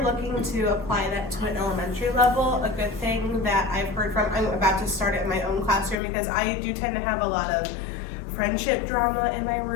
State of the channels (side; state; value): right; drops out; at 6.0 s